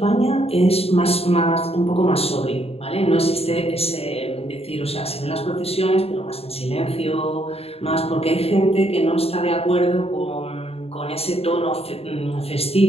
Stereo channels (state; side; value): late; right; 0.29 ms